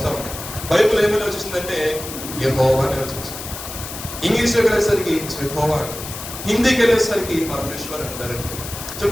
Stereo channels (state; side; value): noise; left; hiss, 10 dB below the sound